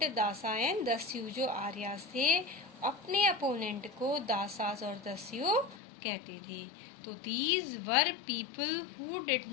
dasa and dasyu. जो आर्यस थे अपने अपोनेंट को दासास और दस्यु कहते थे। तो these were people who did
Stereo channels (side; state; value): right; drops out; at 5.8 s